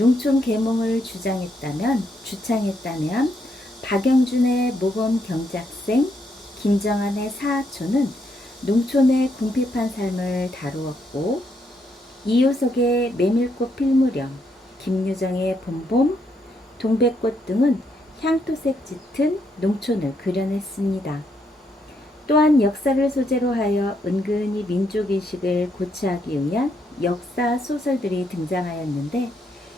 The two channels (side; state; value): both; normal; correlation 0.76